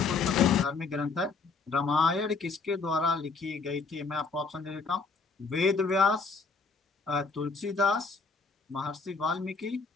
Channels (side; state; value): right; quieter; 4.4 dB